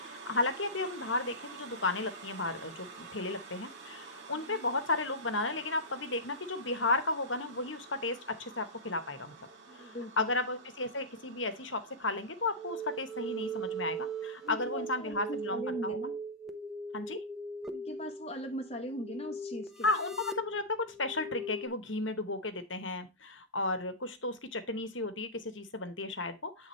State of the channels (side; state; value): both; normal; correlation -0.16